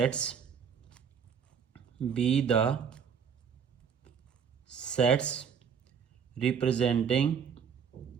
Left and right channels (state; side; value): quieter; left; 7.1 dB